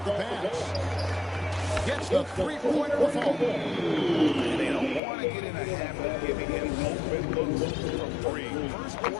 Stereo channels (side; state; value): right; drops out; at 5.0 s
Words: the pass. Gets the three-pointer to fall. And they don't want to get in a habit of giving him open looks from three. First